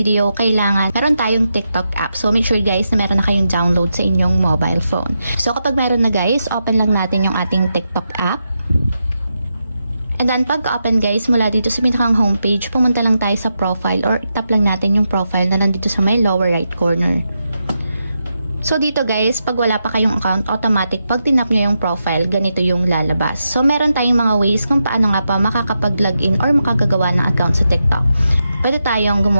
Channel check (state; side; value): inverted; both; correlation -0.86